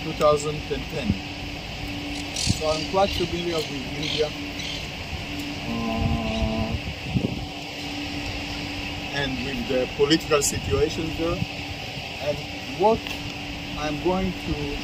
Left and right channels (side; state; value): both; identical; correlation 1.00